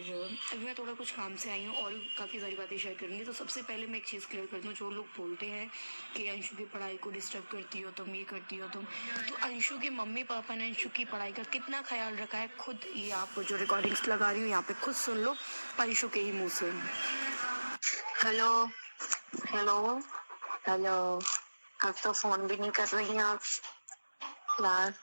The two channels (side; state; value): both; inverted; correlation -1.00